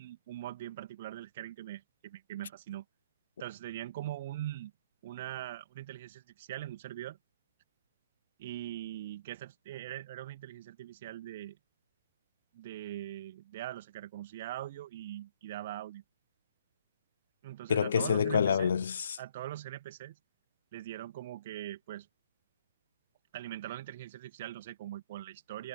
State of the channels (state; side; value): inverted; both; correlation -0.64